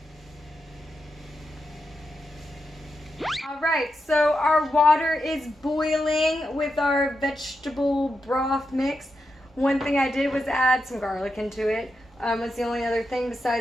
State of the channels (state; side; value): normal; both; correlation 0.87